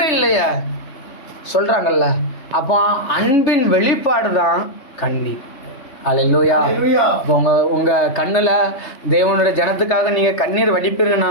இல்லையே சொல்றாங்கல்ல. அப்போ அன்பின் வெளிப்பாடு தான் கண்ணீர். அல்லேலூயா. இப்போ உங்க கண்ணுல தேவனுடைய ஜனத்துக்காக நீங்க கண்ணீர்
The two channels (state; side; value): late; right; 3.3 ms